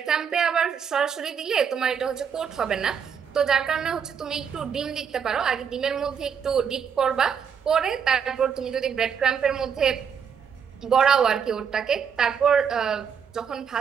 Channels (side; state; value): left; quieter; 7.1 dB